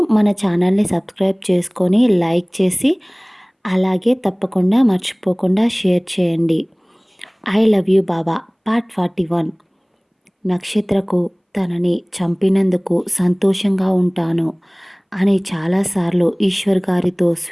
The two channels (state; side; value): identical; both; correlation 1.00